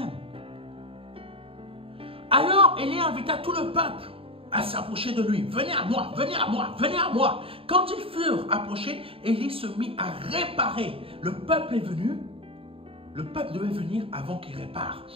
Alors Élie invita tout le peuple à s'approcher de lui. Venez à moi, venez à moi, venez à moi. Quand ils furent approchés, Élie se mit à réparer. Le peuple est venu. Le peuple devait venir avant qu'il répare.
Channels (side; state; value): left; late; 0.27 ms